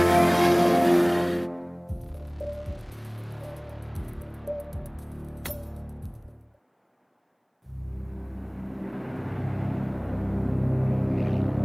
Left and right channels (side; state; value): both; identical; correlation 1.00